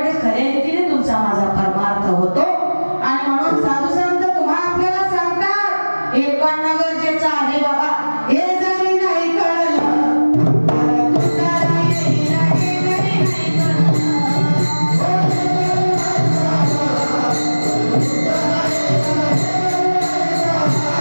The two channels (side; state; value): both; inverted; correlation -1.00